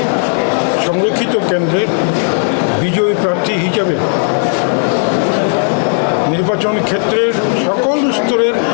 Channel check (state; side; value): silent; right; digital silence